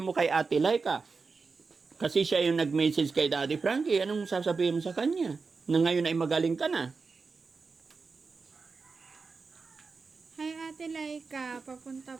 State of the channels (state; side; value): quieter; left; 4.6 dB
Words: kay Ate Laika? Kasi siya yung nag-message kay Daddy Frankie. Anong sasabihin mo sa kanya? Na ngayon ay magaling ka na. Hi Ate Laika, papunta